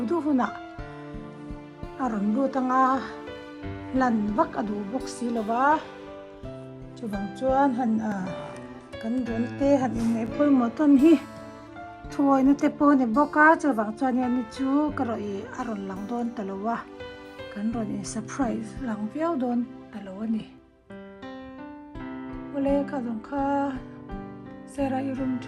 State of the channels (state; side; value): identical; both; correlation 1.00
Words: huna aron bu tanga lan vak adu box si lawa chawang chuan han kan don te han in nei poi mo ton hi thuai na te po ne boka chawang chuan ani chu karoi aron lang don talowa kan ron in surprise lang viau don talo ani ole ka dong kha sera I room